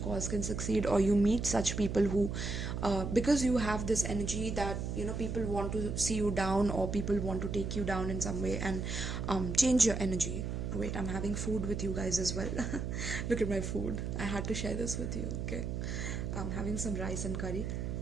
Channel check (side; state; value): right; noise; hum, 3 dB below the sound